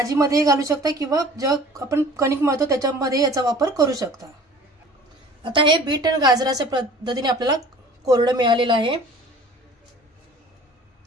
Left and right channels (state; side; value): normal; both; correlation 0.46